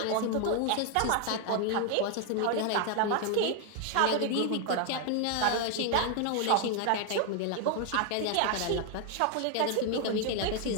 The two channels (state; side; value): different; both; correlation 0.00